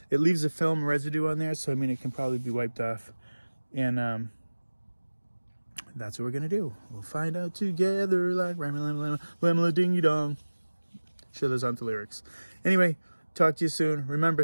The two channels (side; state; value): both; inverted; correlation -1.00